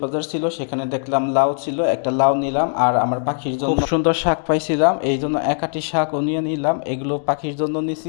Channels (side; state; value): right; silent; digital silence